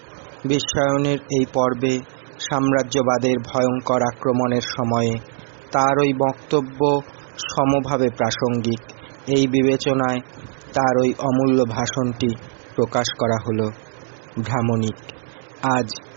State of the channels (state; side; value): silent; left; 59 dB below the other